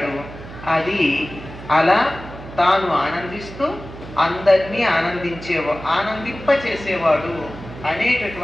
అది అలా తాను ఆనందిస్తూ అందరినీ ఆనందింపచేసేవాడు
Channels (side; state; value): right; noise; hum, 14 dB below the sound